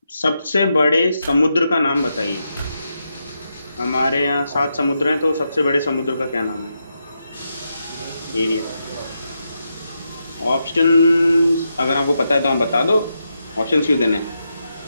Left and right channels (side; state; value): both; inverted; correlation -0.85